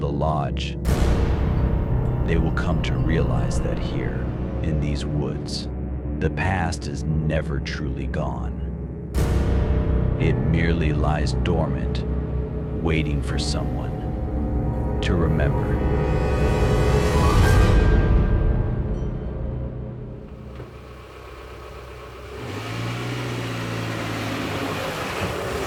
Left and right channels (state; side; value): identical; both; correlation 1.00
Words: lodge, they will come to realize that here, in these woods, the past is never truly gone. It merely lies dormant, waiting for someone to remember.